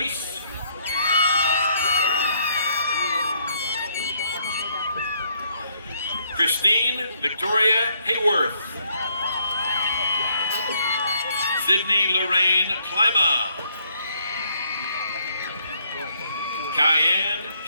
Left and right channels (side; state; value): both; inverted; correlation -0.70